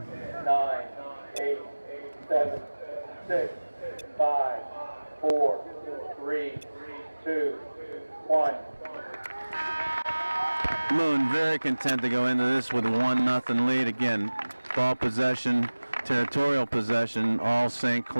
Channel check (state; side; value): inverted; both; correlation -1.00